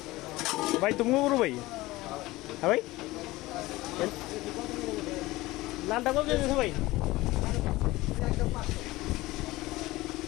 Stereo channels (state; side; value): quieter; right; 19.1 dB